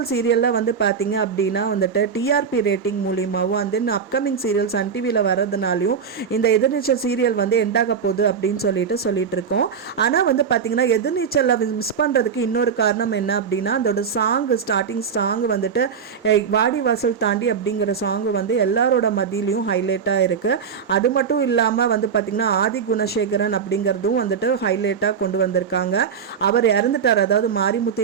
சீரியலில் வந்து பார்த்திங்க அப்படின்னா வந்துட்டு டிஆர்பி ரேட்டிங் மூலியமாகவும் வந்து அப்கமிங் சீரியல் சன் டிவியில் வர்றதுனாலையும் இந்த எதிர்நீச்சல் சீரியல் வந்து எண்டாக போகுது அப்படின்னு சொல்லிட்டு இருக்கோம். ஆனால் வந்து பார்த்திங்கன்னா எதிர்நீச்சலில் மிஸ் பண்ணுறதுக்கு இன்னொரு காரணம் என்ன அப்படின்னா அதோட ஸ்டார்டிங் சாங் வந்துட்டு வாடி வாசல் தாண்டி அப்படிங்கிற சாங் வந்து எல்லாரோட மத்தியிலையும் ஹைலைட்டாக இருக்குது. அது மட்டும் இல்லாமல் வந்து பார்த்திங்கன்னா ஆதி குணசேகரன் அப்படிங்கிறதும் வந்துட்டு ஹைலைட்டாக கொண்டு வந்திருக்காங்க. அவர் இறந்துட்டார், அதாவது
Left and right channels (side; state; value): left; quieter; 6.6 dB